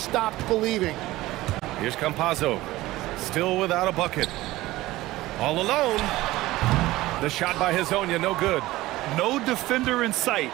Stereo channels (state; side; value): quieter; left; 17.6 dB